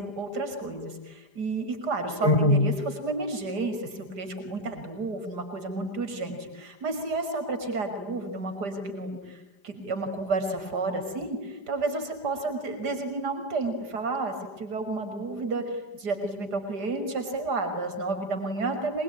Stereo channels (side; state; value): left; late; 4.9 ms